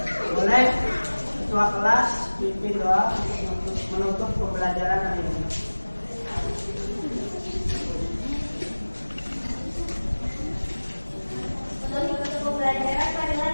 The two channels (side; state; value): both; inverted; correlation -1.00